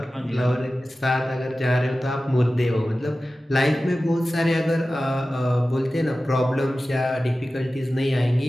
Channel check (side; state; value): both; normal; correlation 0.95